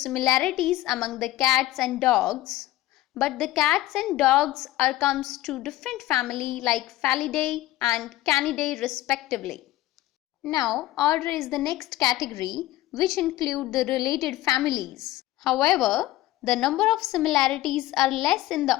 among the cats and dogs, but the cats and dogs comes to different family like Felidae and Canidae respectively. Now, order is the next category which include the related families. However, the number of similarities are less in the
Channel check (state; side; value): quieter; right; 16.3 dB